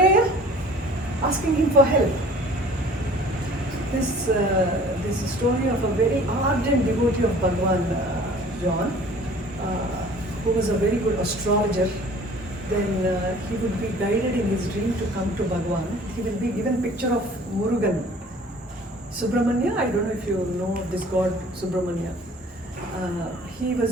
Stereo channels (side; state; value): both; normal; correlation 0.50